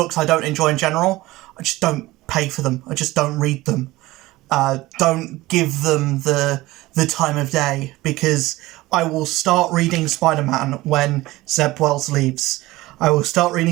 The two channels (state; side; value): quieter; left; 18.7 dB